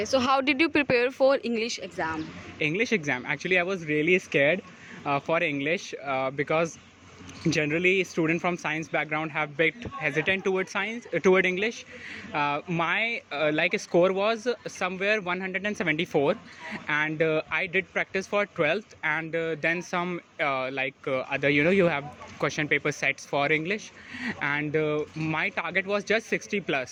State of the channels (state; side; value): identical; both; correlation 1.00